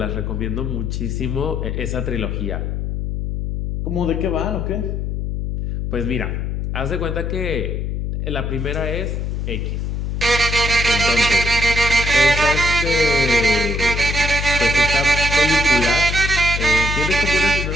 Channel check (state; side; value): noise; left; hum, 2 dB below the sound